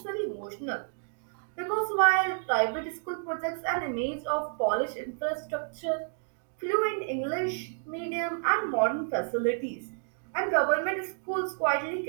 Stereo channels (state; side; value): silent; left; digital silence